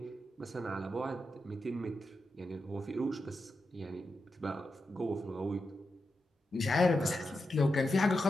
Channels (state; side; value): normal; both; correlation 0.88